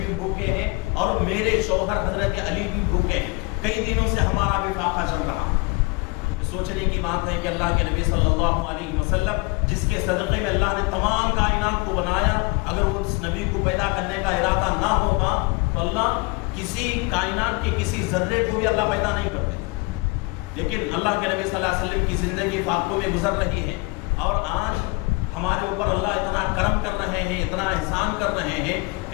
بھوکے ہیں اور میرے شوہر حضرت علی بھی بھوکے ہیں، کئی دنوں سے ہمارا بھی فاقہ چل رہا۔ سوچنے کی بات ہے کہ اللہ کے نبی صلی اللہ علیہ وسلم جس کے صدقے میں اللہ نے تمام کائنات کو بنایا، اگر وہ اس نبی کو پیدا کرنے کا ارادہ نہ ہوتا تو اللہ کسی کائنات کے کسی ذرے کو بھی اللہ پیدا نہیں کرتے، لیکن اللہ کے نبی صلی اللہ علیہ وسلم کی زندگی فاقوں میں گزر رہی ہے اور آج ہمارے اوپر اللہ اتنا کرم کر رہے ہیں، اتنا احسان کر رہے ہیں،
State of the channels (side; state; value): right; quieter; 26.8 dB